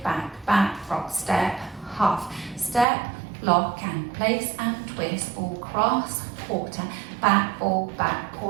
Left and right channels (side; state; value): left; drops out; at 2.9 s